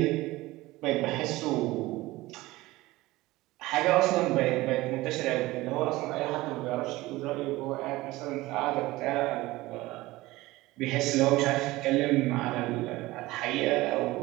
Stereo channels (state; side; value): quieter; left; 19.0 dB